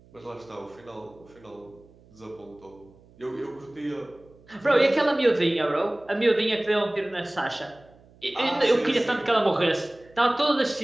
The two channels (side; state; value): right; noise; hum, 27 dB below the sound